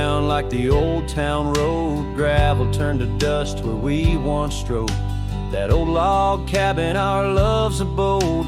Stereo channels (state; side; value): identical; both; correlation 1.00